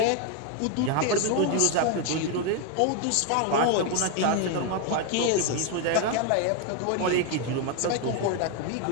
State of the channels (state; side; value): different; both; correlation 0.01